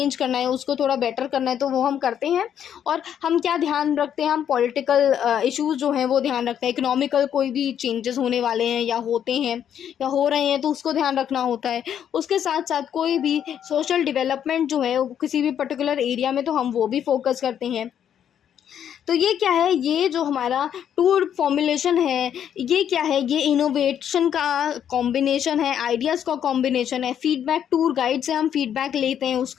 करना है, उसको थोड़ा बेटर करना है, तो वो हम करते हैं. और हम क्या ध्यान रखते हैं, हम पॉलिटिकल इशूज़ जो हैं वो ध्यान रखते हैं, इकोनॉमिकल कोई भी चेंजेस होने वाले हैं या होते हैं या हो रहे हैं तो उसको ध्यान रखना होता है. उसके साथ साथ कोई भी सोशल डेवलपमेंट जो है किसी भी पर्टिकुलर एरिया में, तो हम वो भी फोकस करते हैं. तो ये क्या है, ये जो हमारा टूर फॉर्मुलेशन है ये क्या है, ये इनोवेशन का कॉम्बिनेशन है, आइडियाज़ का कॉम्बिनेशन है, फीडबैक टूर गाइड से हम फीडबैक लेते हैं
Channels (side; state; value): right; quieter; 9.3 dB